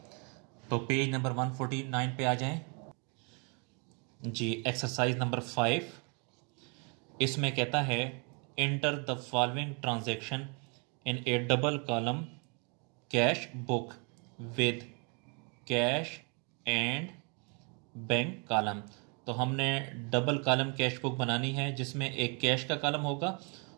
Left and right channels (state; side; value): quieter; left; 34.8 dB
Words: तो पेज नंबर 149 पे आ जाएं जी। एक्सरसाइज नंबर 5 इसमें कहता है enter the following transaction in A double column cash book with cash and bank column. तो हमने डबल कॉलम कैश बुक बनानी है जिसमें एक कैश का कॉलम होगा